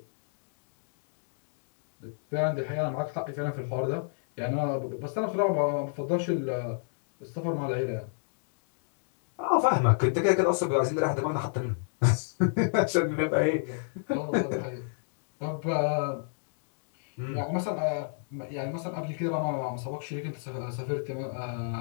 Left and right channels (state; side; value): silent; right; digital silence